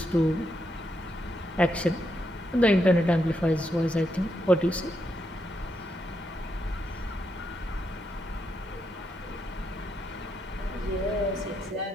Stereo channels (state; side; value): normal; both; correlation 0.81